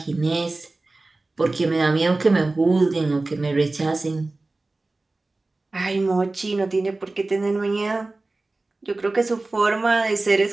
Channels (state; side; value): quieter; left; 3.2 dB